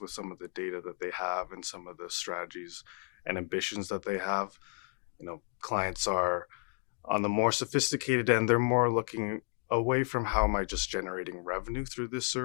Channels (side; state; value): right; quieter; 39.3 dB